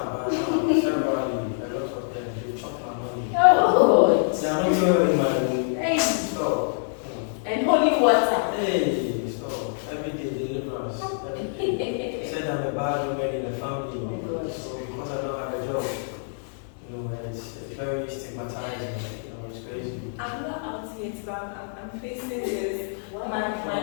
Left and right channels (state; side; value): silent; right; digital silence